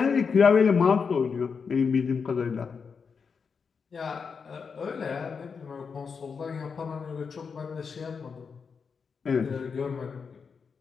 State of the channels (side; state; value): right; quieter; 5.7 dB